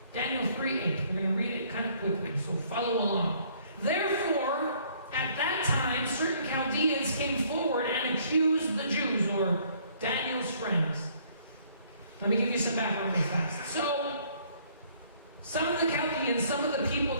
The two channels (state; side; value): inverted; both; correlation -0.62